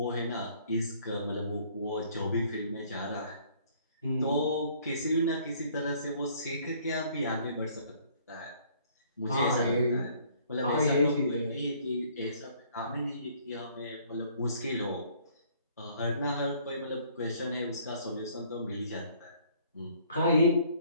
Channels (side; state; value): both; inverted; correlation -0.60